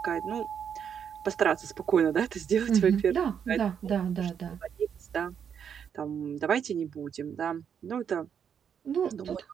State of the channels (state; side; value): quieter; left; 7.8 dB